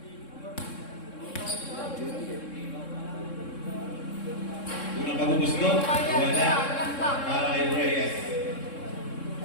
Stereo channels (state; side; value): late; right; 3.7 ms